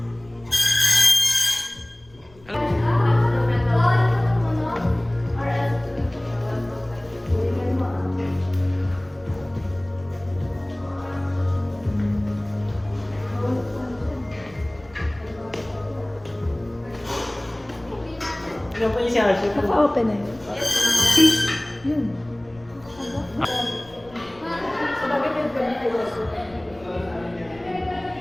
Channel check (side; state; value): left; noise; rumble, 25 dB below the sound